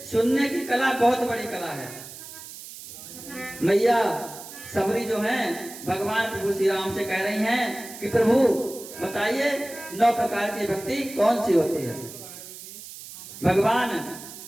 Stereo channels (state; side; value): noise; right; hiss, 14 dB below the sound